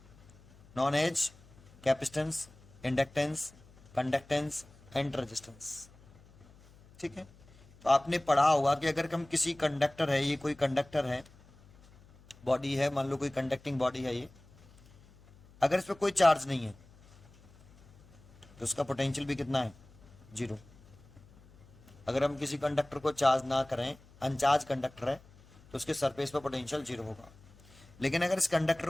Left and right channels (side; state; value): left; noise; hum, 25 dB below the sound